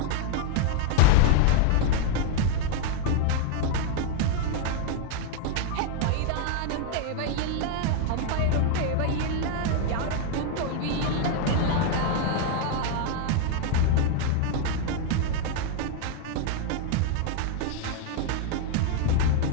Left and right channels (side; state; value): both; different; correlation 0.00